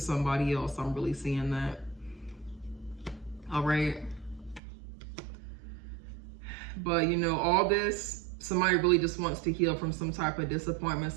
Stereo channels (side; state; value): left; drops out; at 4.6 s